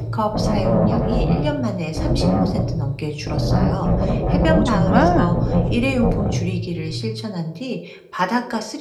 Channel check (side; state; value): both; identical; correlation 1.00